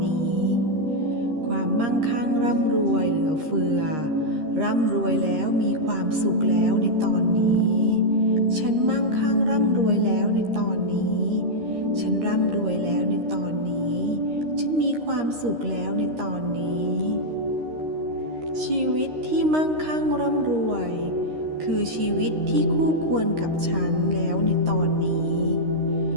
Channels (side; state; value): left; late; 13 ms